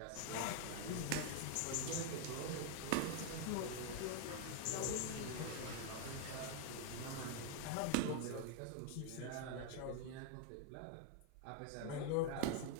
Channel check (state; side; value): different; both; correlation 0.00